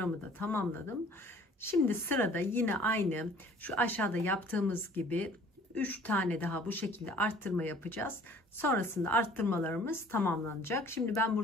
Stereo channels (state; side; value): normal; both; correlation 0.52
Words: da tamamladım. Şimdi sırada yine aynı şu aşağıda yaptığımız gibi 3 tane daha bu şekilde arttırma yapacağız. Sonrasında arttırmalarımız tamamlanacak. Şimdi ben